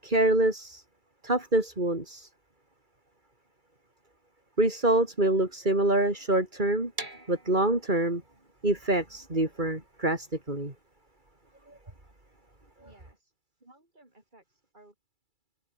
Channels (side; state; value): left; late; 2.3 ms